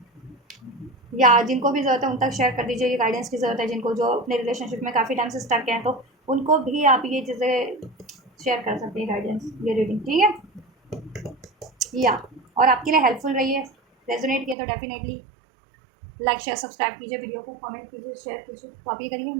या जिनको भी ज़रूरत है उन तक शेयर कर दीजिए, ये गाइडेंस की ज़रूरत है जिनको, जो अपने रिलेशनशिप में काफ़ी टाइम से स्टक हैं, तो उनको भी आप ये चीज़ें शेयर कर सकते हैं, गाइडेंस, ये रीडिंग, ठीक है। या और आपके लिए हेल्पफुल रही है, रेजोनेट किया तो डेफिनेटली लाइक शेयर सब्सक्राइब कीजिए, वीडियो को कमेंट कीजिए, शेयर कीजिए। तो आप ये करिए,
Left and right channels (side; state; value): left; drops out; at 14.6 s